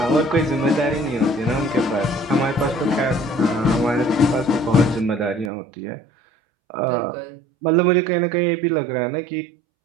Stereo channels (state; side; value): drops out; left; at 5.5 s